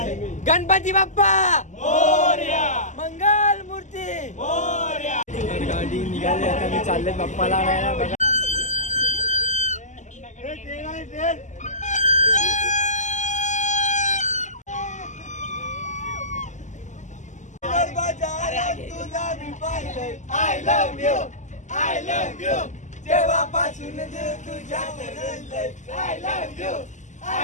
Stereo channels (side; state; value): right; late; 0.35 ms